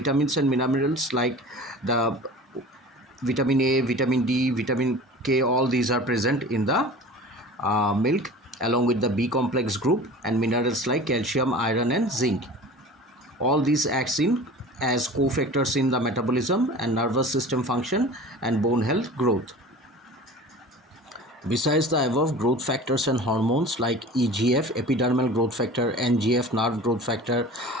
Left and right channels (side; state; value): both; normal; correlation 0.39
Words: and minerals like the vitamin A, vitamin D, vitamin K, all these are present in the milk, along with the B complex group, and minerals like calcium, iron and zinc. All these acts in as cofactors in the metabolism and nervous system function and bone health growth. Besides the above growth factors and hormones like EGF, epidermal growth factor, NGF, nerve growth factor,